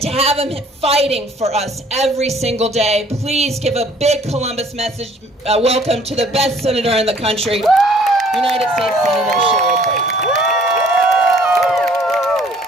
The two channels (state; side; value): normal; both; correlation 0.57